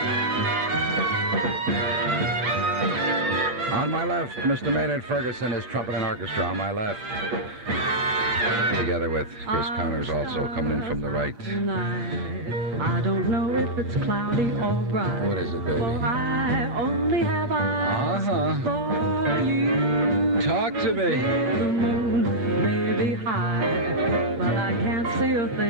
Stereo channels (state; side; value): late; left; 8.2 ms